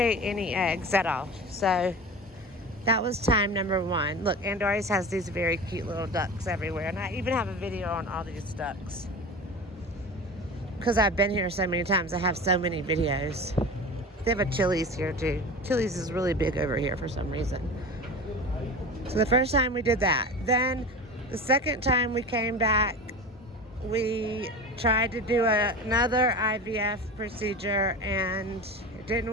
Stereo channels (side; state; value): both; normal; correlation 0.32